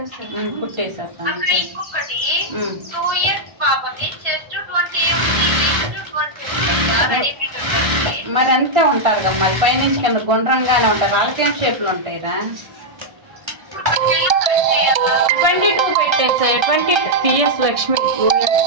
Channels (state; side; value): late; left; 1.3 ms